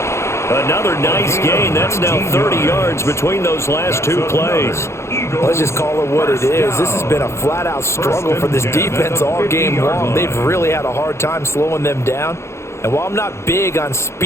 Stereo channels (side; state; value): right; late; 0.13 ms